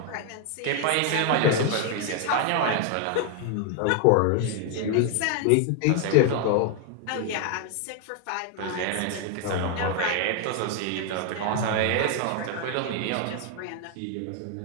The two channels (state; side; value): different; both; correlation 0.01